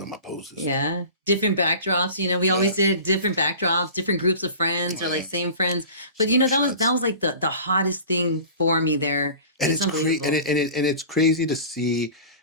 on my poses. Yeah. Different backdrops. We always did different backdrops, different groups of friends, or like same friends. But that was like the hottest thing for me there. It's unbelievable. And it's crazy to see,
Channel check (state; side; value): inverted; both; correlation -0.38